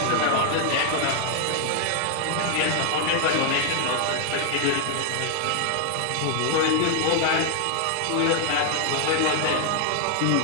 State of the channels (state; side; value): different; both; correlation 0.00